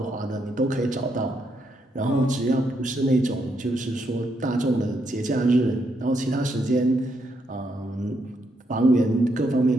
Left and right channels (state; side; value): normal; both; correlation 0.78